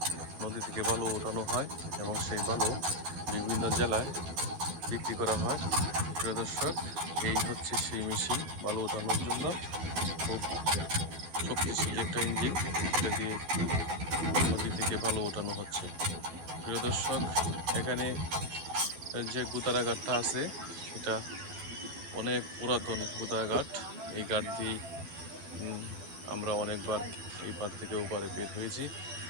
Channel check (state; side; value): late; left; 12 ms